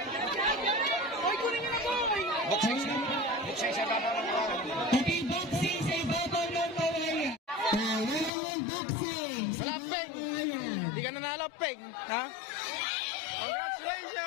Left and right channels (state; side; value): drops out; right; at 8.3 s